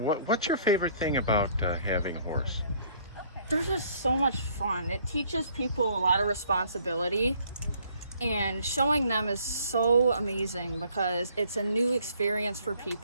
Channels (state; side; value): inverted; both; correlation -0.61